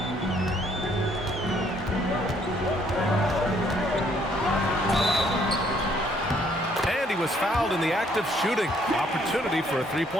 And he was fouled in the act of shooting. Opportunity for a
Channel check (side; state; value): both; normal; correlation 0.66